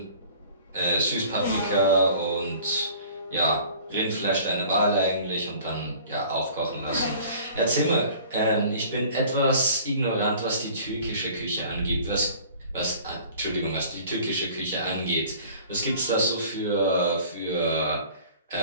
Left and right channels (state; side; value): inverted; both; correlation -0.48